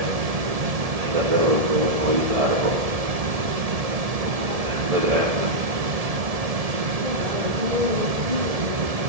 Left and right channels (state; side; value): late; left; 1.7 ms